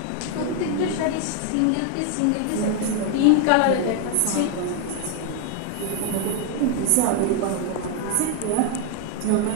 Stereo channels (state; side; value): different; both; correlation 0.01